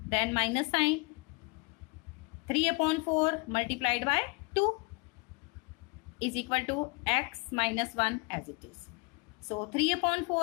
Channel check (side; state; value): right; quieter; 27.9 dB